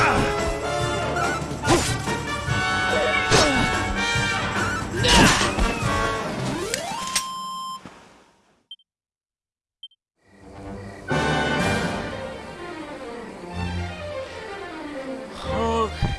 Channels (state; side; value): identical; both; correlation 1.00